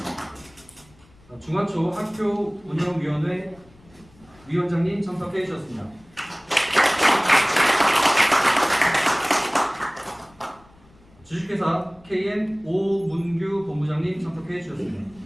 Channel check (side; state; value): left; noise; rumble, 28 dB below the sound